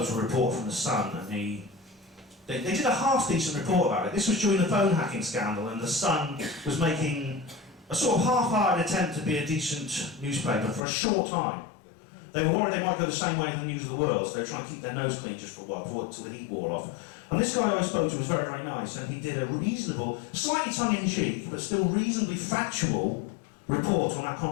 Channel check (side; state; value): right; drops out; at 10.8 s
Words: to a reporter from the Sun, and they did a half-decent report about it. This was during the phone hacking scandal, and the Sun was making a sort of half-hearted attempt to be a decent newspaper for a short time. They were worried they might go the same way as the News of the World, so they were trying to keep their nose clean just for a while, until the heat wore off. And this guy I spoke to was very, very nice, and he did a reasonable, slightly tongue-in-cheek, but still reasonably factual report on that